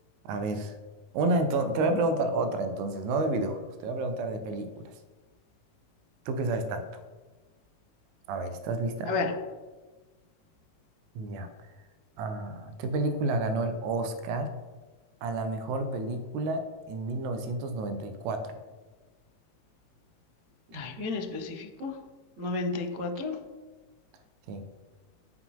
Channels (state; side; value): late; left; 18 ms